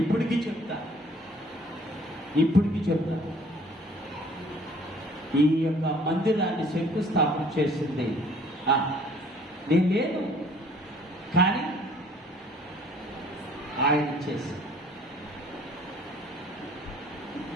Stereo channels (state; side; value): normal; both; correlation 0.56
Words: చెప్తాను. ఈ యొక్క మందిరాన్ని శంకుస్థాపన చేసింది నేను లేదు, కానీ ఆయన చేసి